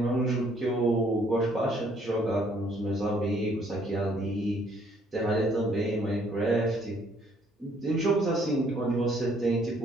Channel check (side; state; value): both; normal; correlation 0.65